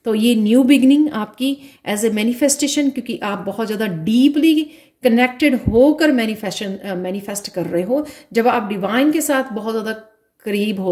तो ये न्यू बिगनिंग आपकी एज ए मैनिफेस्टेशन, क्योंकि आप बहुत ज़्यादा डीपली कनेक्टेड होकर मैनिफेस्ट कर रहे हो। जब आप डिवाइन के साथ बहुत ज़्यादा करीब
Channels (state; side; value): identical; both; correlation 1.00